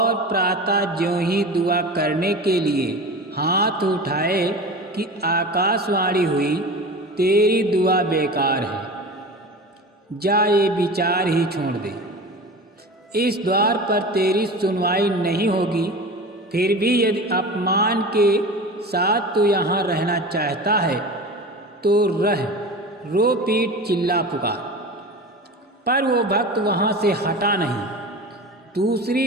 प्रातः ज्यों ही दुआ करने के लिए हाथ उठाए कि आकाशवाणी हुई, तेरी दुआ बेकार है, जा ये विचार ही छोड़ दे। इस द्वार पर तेरी सुनवाई नहीं होगी। फिर भी यदि अपमान के साथ तू यहाँ रहना चाहता है तो रह, रो पीट चिल्ला पुकार। पर वो भक्त वहाँ से हटा नहीं।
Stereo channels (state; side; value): normal; both; correlation 0.32